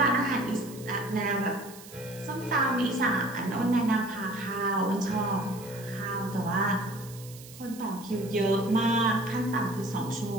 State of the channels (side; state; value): right; noise; hiss, 18 dB below the sound